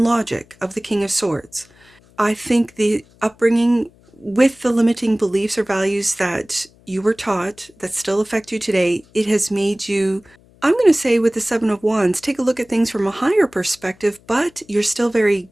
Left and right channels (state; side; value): noise; left; hum, 29 dB below the sound